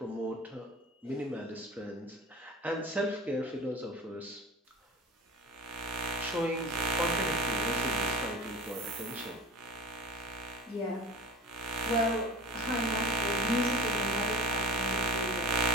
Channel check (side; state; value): both; normal; correlation 0.34